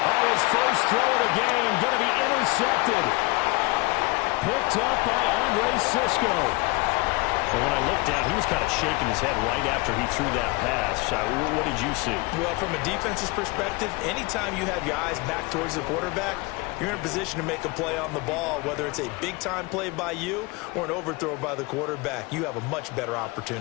Oh, his first throw of the game going to be intercepted. Picked up by Andre Cisco. Well, when I looked down, he was kind of shaking his head right after he threw that pass. What did you see? Well, from a defense's perspective, anytime you have your eyes back towards the quarterback, you're in a position to make a play on the ball, whether it's a big-time play by you or an overthrow by the quarterback. You have a much better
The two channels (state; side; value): quieter; right; 24.7 dB